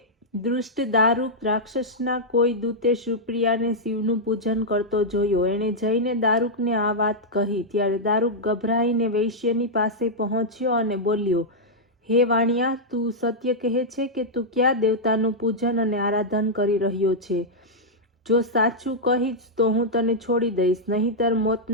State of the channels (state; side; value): normal; both; correlation -0.06